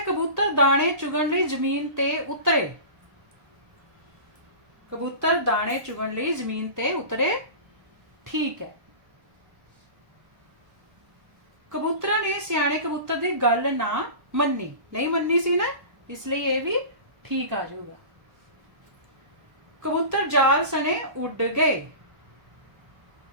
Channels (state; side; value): late; left; 1.2 ms